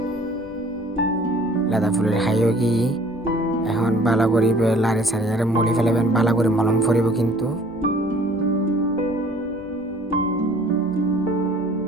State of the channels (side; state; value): both; normal; correlation 0.53